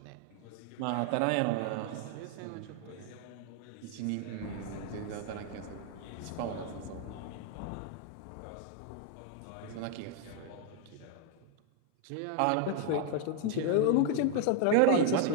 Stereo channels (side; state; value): both; different; correlation 0.00